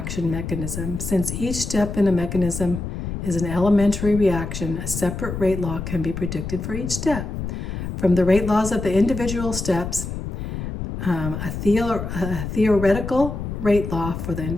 mechanism. Since each step in a mechanism is an elementary reaction, a separate rate law can be predicted for each step. From the rate laws of the individual steps, a theoretical rate law for the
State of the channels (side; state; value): left; noise; rumble, 6 dB below the sound